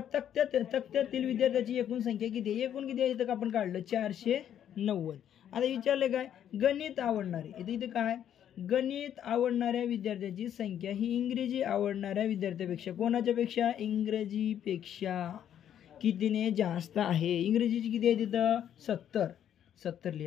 तक्त्यातील विद्यार्थ्याची एकूण संख्या किती आहे. एकूण किती आहे इथं आपण काढलं 490. आता विचारले काय गणित आवडणारे इथे काय गणित आवडणाऱ्या विद्यार्थ्याची संख्या ही इंग्रजी आवडणाऱ्या विद्यार्थ्यापेक्षा कोणाच्या पेक्षा इंग्रजीपेक्षा कितीने जास्त आहे. इंग्रजीची किती आहे तिथं 70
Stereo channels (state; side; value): quieter; right; 10.0 dB